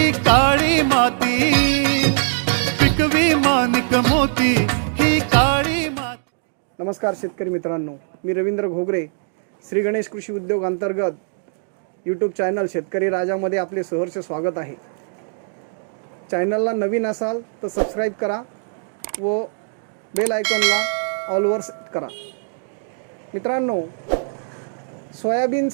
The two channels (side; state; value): left; silent; digital silence